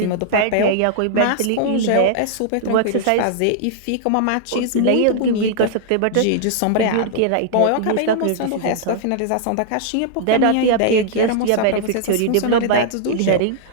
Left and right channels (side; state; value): both; different; correlation -0.01